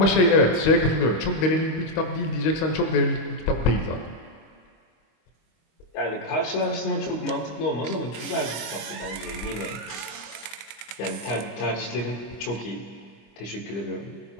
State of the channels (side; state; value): right; late; 25 ms